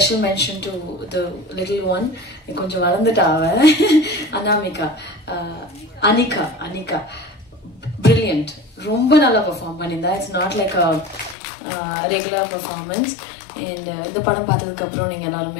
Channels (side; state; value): right; drops out; at 11.4 s